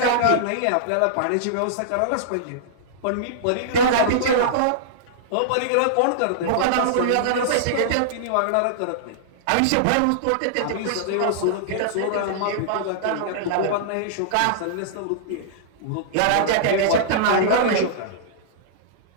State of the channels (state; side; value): different; both; correlation -0.02